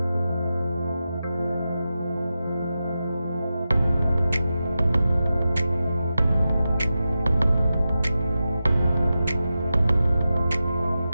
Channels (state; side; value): inverted; both; correlation -0.92